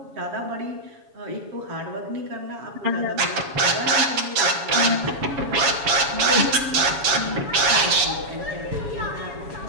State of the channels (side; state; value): left; late; 7.1 ms